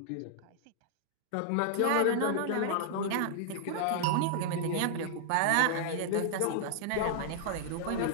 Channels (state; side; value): different; both; correlation -0.01